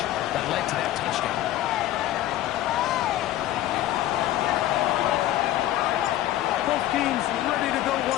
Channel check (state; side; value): quieter; right; 13.8 dB